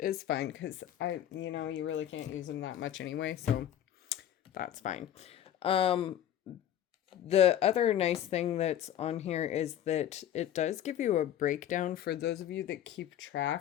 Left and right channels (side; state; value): right; quieter; 11.0 dB